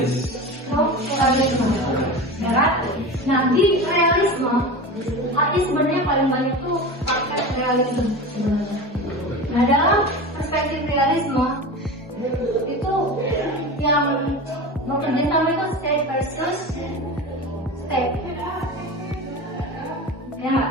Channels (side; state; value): both; normal; correlation 0.29